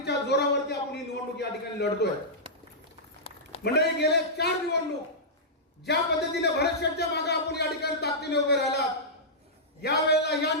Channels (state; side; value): normal; both; correlation -0.13